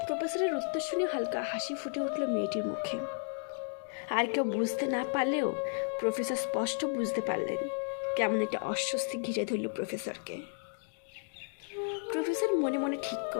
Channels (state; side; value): silent; right; digital silence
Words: প্রফেসরের উত্তর শুনে হালকা হাসি ফুটে উঠল মেয়েটির মুখে। আর কেউ বুঝতে না পারলেও প্রফেসর স্পষ্ট বুঝতে পারলেন কেমন একটা অস্বস্তি ঘিরে ধরল প্রফেসরকে। প্রফেসর মনে মনে ঠিক